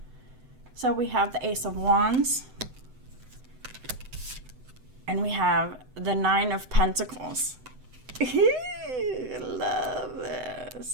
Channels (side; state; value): left; late; 7.9 ms